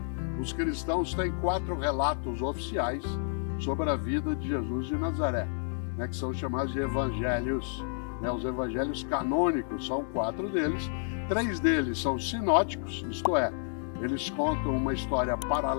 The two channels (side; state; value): right; silent; digital silence